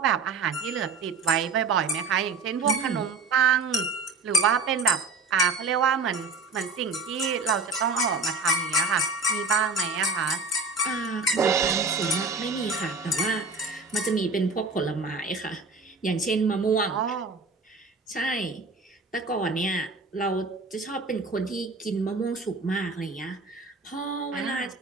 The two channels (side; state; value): left; quieter; 4.0 dB